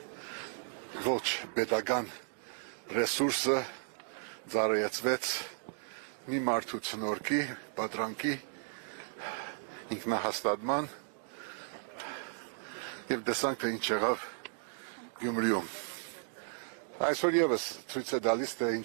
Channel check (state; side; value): silent; left; digital silence